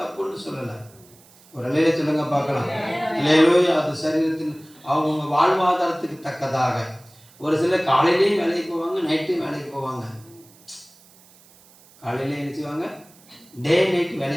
தப்புன்னு சொல்லலை. ஒரு நிலையில சொல்லுங்க பார்க்கலாம். அல்லேலூயா. அது சரீரத்தின் அவங்க வாழ்வாதாரத்துக்கு தக்கதாக. ஒரு சிலர் காலையிலேயும் வேலைக்கு போவாங்க, நைட்டும் வேலைக்கு போவாங்க. காலையிலே என்ன செய்வாங்க, டே நைட்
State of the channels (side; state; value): right; noise; hiss, 26 dB below the sound